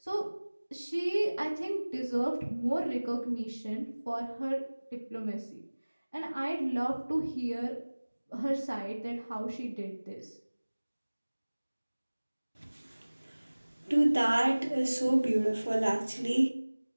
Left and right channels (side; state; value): both; inverted; correlation -1.00